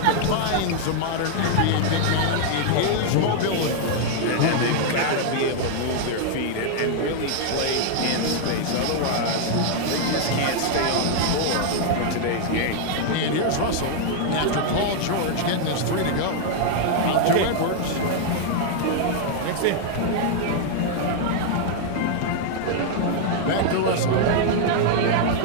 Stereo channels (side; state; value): both; different; correlation 0.00